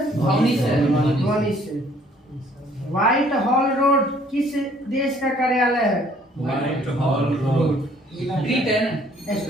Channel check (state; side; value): normal; both; correlation 0.60